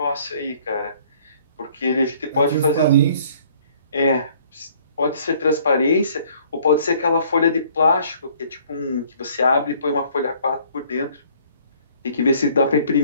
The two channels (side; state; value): both; inverted; correlation -0.58